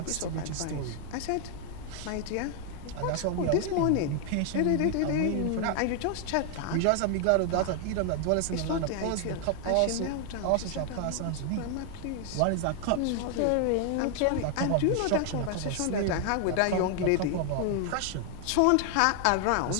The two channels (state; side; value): different; both; correlation 0.00